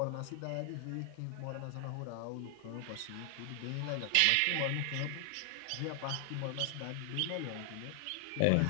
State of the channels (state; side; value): different; both; correlation 0.00